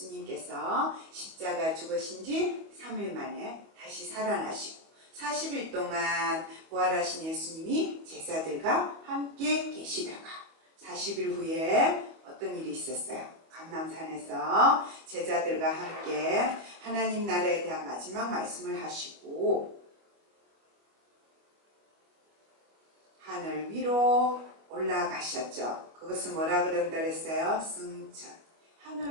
십자가 죽으신 지 3일 만에 다시 살아나시고 40일 동안 부활하신 예수님이 제자들과 함께 계시다가 40일 후에 어떤 일이 있었어요? 감람산에서 제자들과 함께 하나님 나라에 대한 마지막 말씀을 하시고 하늘 위로 올라가셨죠. 그것은 뭐라 그런다 그랬어요? 승천.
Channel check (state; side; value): late; left; 25 ms